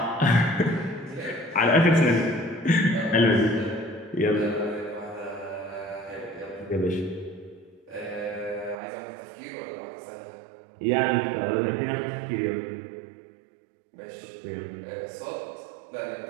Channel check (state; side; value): drops out; left; at 8.8 s